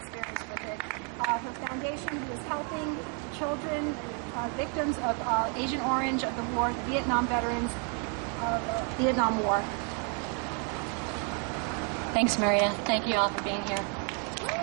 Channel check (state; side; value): quieter; left; 39.2 dB